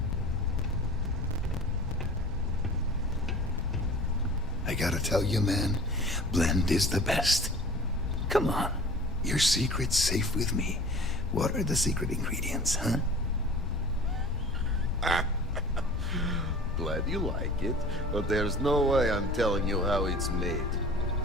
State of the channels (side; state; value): both; normal; correlation 0.42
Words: I gotta tell you, man, Blend is the best. Come on, your secret's safe with me. What are the secret ingredients, huh? Glad you like it, but there's no way I'm telling you how it's made.